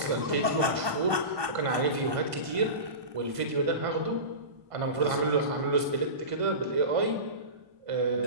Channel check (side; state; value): left; late; 1.2 ms